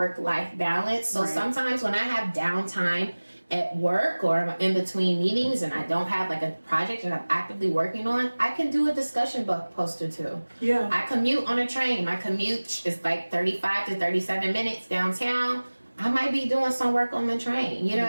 balance. So sometimes when I have downtime at work or in between meetings and I don't have like a project that I'm actively working on, I can do a discussion post or two. Yeah. I commute on a train. My commute is like 35 to 37 minutes downtown. I might be doing some work on the train. You know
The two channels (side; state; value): both; inverted; correlation -1.00